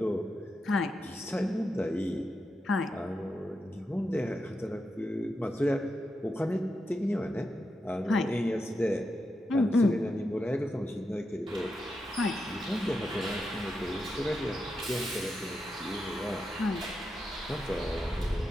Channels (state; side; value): normal; both; correlation 0.87